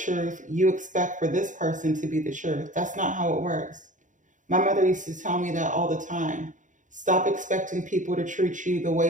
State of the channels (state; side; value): late; left; 0.37 ms